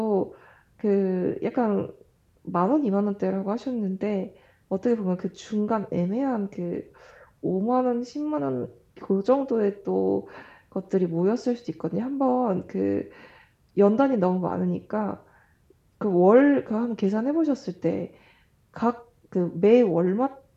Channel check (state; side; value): identical; both; correlation 1.00